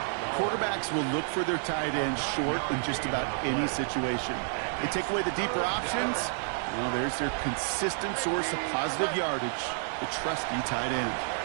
Quarterbacks will look for their tight ends short in just about any situation. They take away the deeper options. Well, there's their consistent source of positive yardage, the trusty tight end.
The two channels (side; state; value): left; silent; 58 dB below the other